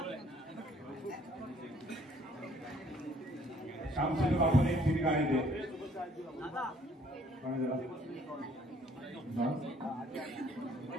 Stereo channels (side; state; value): both; normal; correlation 0.61